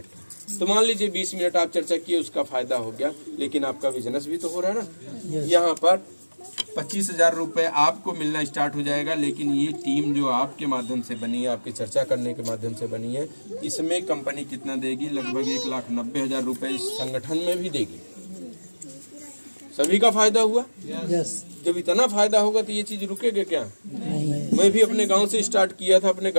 तो मान लीजिए 20 मिनट आप चर्चा किए, उसका फायदा हो गया, लेकिन आपका बिजनेस भी तो हो रहा है ना। यहाँ पर 25,000 रुपए आपको मिलना स्टार्ट हो जाएगा, लेकिन ये टीम जो आपके माध्यम से बनी है, आपके चर्चा करने के माध्यम से बनी है, इसमें कंपनी कितना देगी? लगभग 1,90,000 रुपए इस संगठन में भी देगी। सभी का फायदा हुआ। यस। जब इतना फायदा होगा तो ये चीज रुकेगा क्या? मैं भी अपने गांव से स्टार्ट किया था, अपने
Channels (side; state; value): both; inverted; correlation -1.00